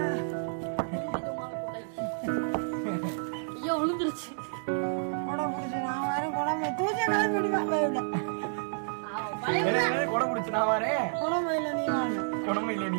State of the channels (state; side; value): silent; left; digital silence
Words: விழுந்துருச்சு. குடம் பிடிச்சு நான் வரேன். குடம்பு இல்லை